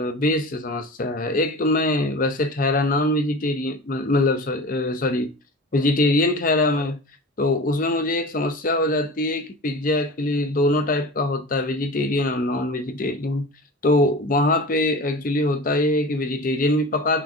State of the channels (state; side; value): normal; both; correlation 0.34